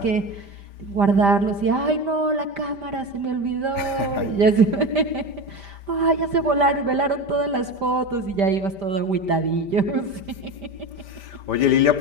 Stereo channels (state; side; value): late; left; 5.1 ms